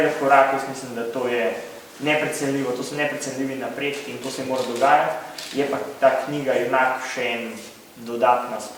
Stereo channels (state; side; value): identical; both; correlation 1.00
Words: korak, jaz mislim, da to je neprecenljivo, to so neprecenljivi napredki in to se mora dogajati. Je pa ta knjiga enak še en dodatna